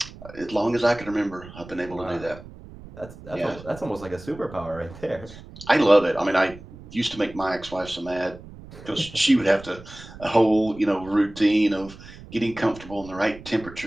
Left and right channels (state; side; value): noise; right; rumble, 17 dB below the sound